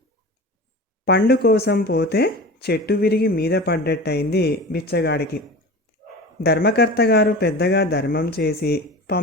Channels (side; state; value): both; normal; correlation 0.34